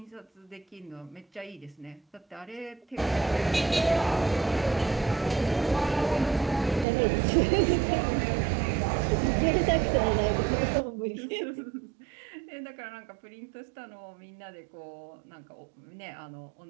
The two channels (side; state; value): left; drops out; at 6.9 s